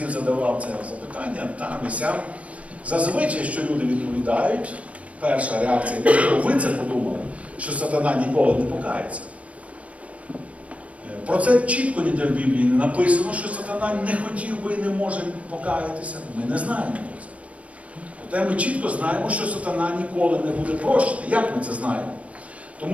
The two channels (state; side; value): late; left; 0.065 ms